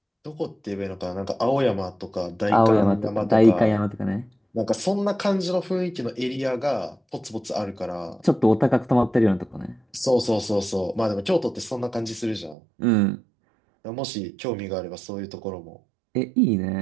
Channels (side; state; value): left; drops out; at 12.6 s